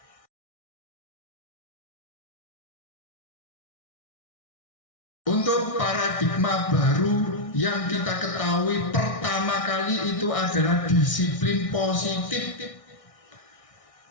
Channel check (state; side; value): late; right; 1.6 ms